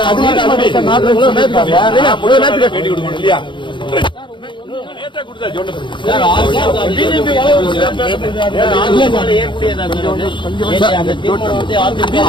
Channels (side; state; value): right; late; 0.23 ms